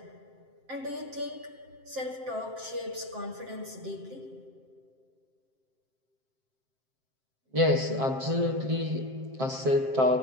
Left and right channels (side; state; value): left; late; 7.6 ms